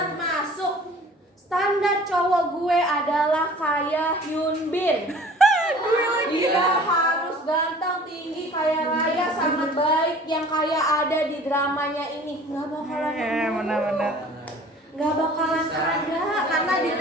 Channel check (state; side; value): normal; both; correlation 0.48